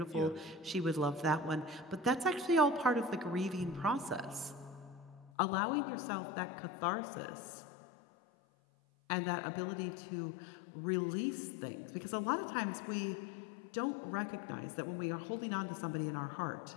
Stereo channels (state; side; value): drops out; right; at 5.3 s